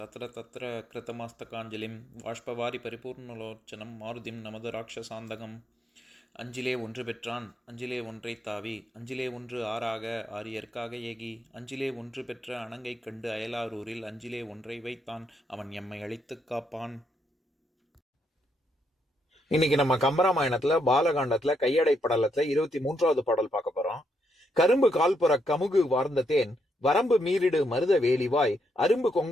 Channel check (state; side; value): normal; both; correlation 0.77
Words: தத்திர தத்திர கிருத்தமாஸ்தகாஞ்சலிம் வாஷ்பவாரி பரிபூர்ணலோச்சனம் மாருதிம் நமது ராட்சசாந்தகம். அஞ்சிலே ஒன்று பெற்றான் அஞ்சிலே ஒன்றை தாவி அஞ்சிலே ஒன்று ஆறாக ஆரியர்க்காக ஏகி அஞ்சிலே ஒன்று பெற்ற அணங்கை கண்டு அயலாரூரில் அஞ்சிலே ஒன்றை வைத்தான் அவன் எம்மை அழித்துக் காப்பான். இன்னைக்கு நம்ம கம்பராமாயணத்துல பாலகாண்டத்துல கையடை படலத்துல 23வது பாடல் பார்க்க போறோம். கரும்பு கால்புற கமுகு வார்ந்த தேன் வரம்பு மீறிடு மருத வேலிவாய் அரும்பு